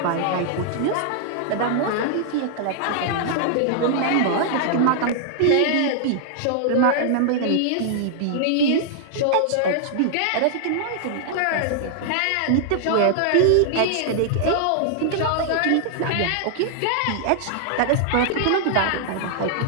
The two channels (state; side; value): different; both; correlation -0.01